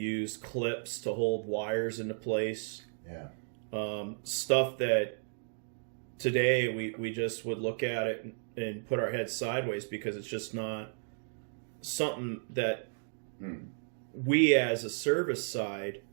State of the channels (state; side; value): silent; left; digital silence